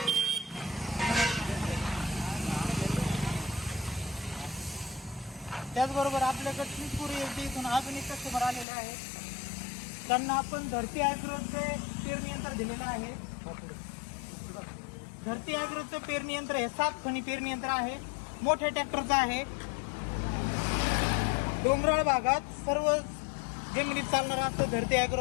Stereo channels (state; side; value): drops out; right; at 8.7 s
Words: त्याचबरोबर आपल्याकडे चिंचपुरी इथून अजून एक कस्टमर आलेले आहेत. त्यांना आपण धरती ॲग्रोचे पेरणी यंत्र दिलेलं आहे. धरती ॲग्रोचं पेरणी यंत्र हे 7 खणी पेरणी यंत्र आहे. मोठ्या ट्रॅक्टरचं आहे. डोंगराळ भागात सर्व जमिनीत चालणारं असं धरती